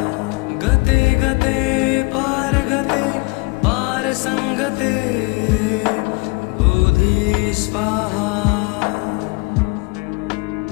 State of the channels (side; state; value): right; quieter; 28.2 dB